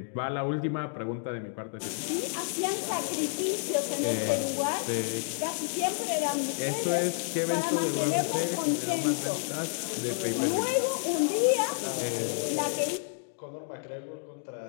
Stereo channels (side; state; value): right; silent; digital silence